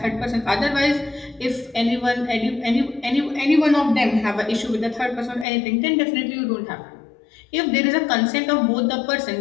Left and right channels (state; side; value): drops out; right; at 5.5 s